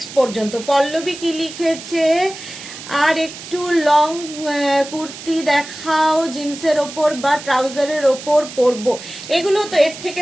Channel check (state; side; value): noise; right; hiss, 13 dB below the sound